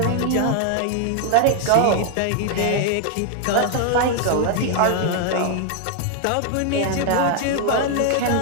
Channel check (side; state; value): both; different; correlation 0.00